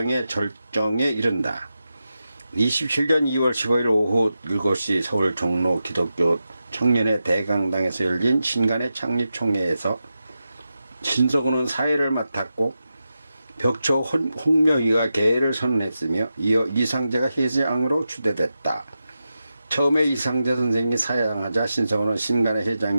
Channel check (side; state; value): both; inverted; correlation -0.90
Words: 절정에 이른다. 27년 2월 15일 오후 7시 서울 종로 기독교 청년의 대강당에서 열린 신간의 창립총회에서 신석구는 사회를 맡았고 벽초 홍명희가 계를 선언했으며 이어 이상재가 회장으로 추대됐다. 처음에 이상재 선생이 사양하자 신석구는 신간의